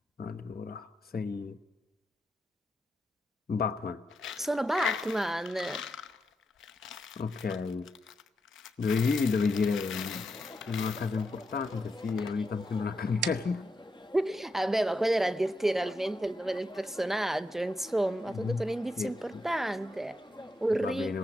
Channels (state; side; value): normal; both; correlation 0.84